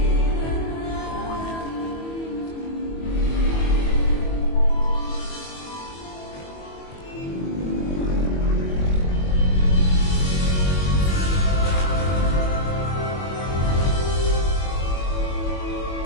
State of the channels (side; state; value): right; late; 21 ms